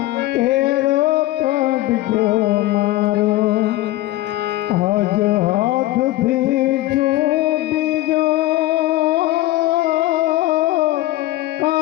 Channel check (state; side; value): quieter; right; 16.8 dB